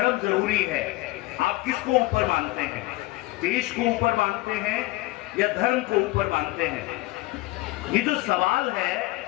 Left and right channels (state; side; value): quieter; right; 20.1 dB